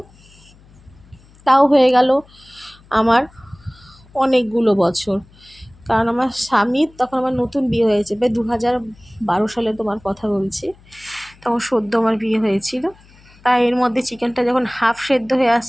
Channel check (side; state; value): left; noise; hum, 27 dB below the sound